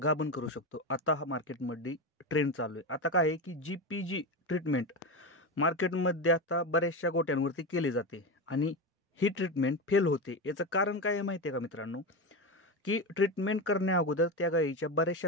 गाभण करू शकतो. आता हा मार्केटमध्ये ट्रेंड चालू आहे. आता काय आहे की GPG ट्रीटमेंट मार्केटमध्ये आता बऱ्याचशा गोट्यांवरती केली जाते आणि ही ट्रीटमेंट फेल होते. याचं कारण काय आहे माहिती आहे का मित्रांनो? की ट्रीटमेंट करण्या अगोदर त्या गाईच्या बऱ्याचशा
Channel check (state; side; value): normal; both; correlation 0.18